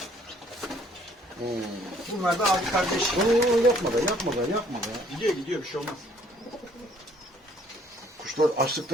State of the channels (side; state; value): both; normal; correlation 0.61